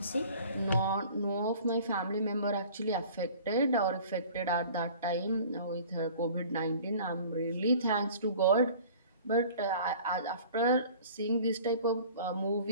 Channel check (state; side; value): inverted; both; correlation -0.47